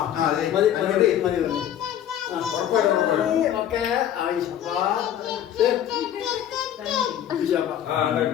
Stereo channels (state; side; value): quieter; right; 10.6 dB